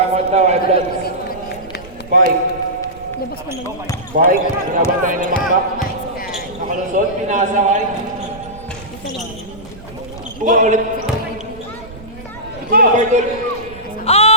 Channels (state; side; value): noise; right; rumble, 18 dB below the sound